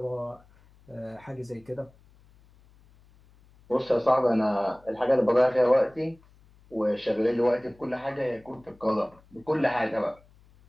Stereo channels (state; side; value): noise; left; hum, 28 dB below the sound